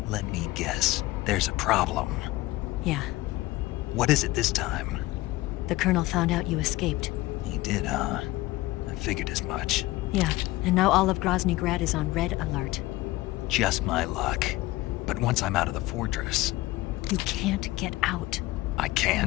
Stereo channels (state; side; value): quieter; right; 18.5 dB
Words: Let me guess. There's a problem. Yeah. What is it this time? The Colonel found out you escaped. He did, huh? I figured as much. Yeah, and now all of Grozny Grad is on red alert. Just my luck. But once I'm out of the fortress... You can't get out. I